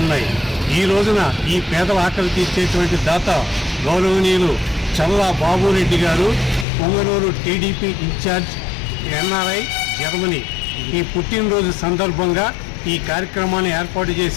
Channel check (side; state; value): right; drops out; at 6.7 s